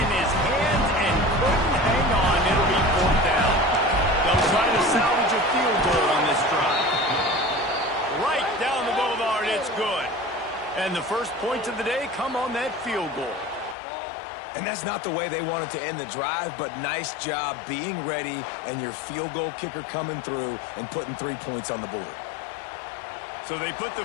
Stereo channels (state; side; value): drops out; right; at 13.8 s